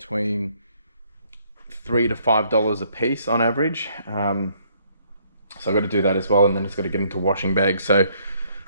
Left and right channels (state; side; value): inverted; both; correlation -0.66